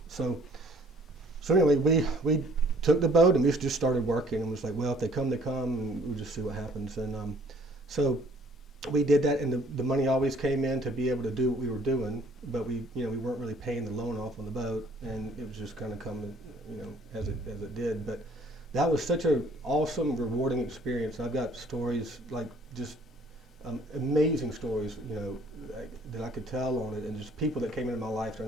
So anyway, we took the boat, and we just started working, and was like, well, if they come, they come, and we'll just see what happens. And so we did that, and the money always came in to be able to do what we were doing, but we weren't really paying the loan off on the boat, and it was just kind of coming, as it did. But that was such an awesome, rewarding experience. I've got stories, like just amazing stories, that I could tell on it, and just people that came into my life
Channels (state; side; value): normal; both; correlation 0.58